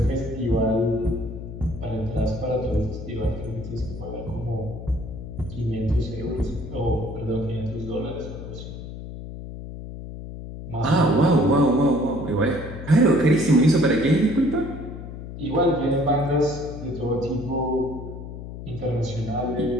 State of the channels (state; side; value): noise; left; hum, 10 dB below the sound